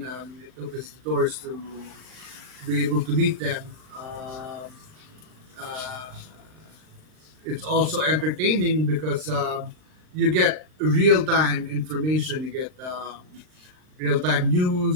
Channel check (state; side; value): late; left; 39 ms